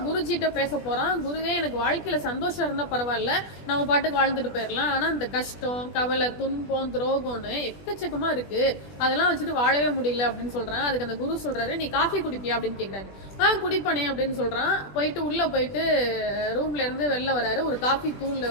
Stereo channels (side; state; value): right; late; 20 ms